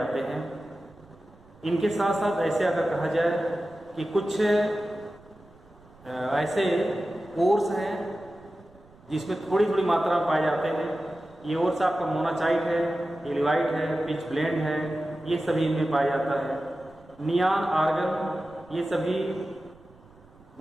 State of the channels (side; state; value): right; noise; rumble, 26 dB below the sound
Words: हैं। इनके साथ साथ ऐसे अगर कहा जाए कि कुछ ऐसे ओर्स हैं जिसमें थोड़ी थोड़ी मात्रा में पाए जाते हैं। ये ओर्स आपका मोनाचाइट है, एलिवाइट है, पिच ब्लेंड है, ये सभी इनमें पाया जाता है। नियान, आर्गन ये सभी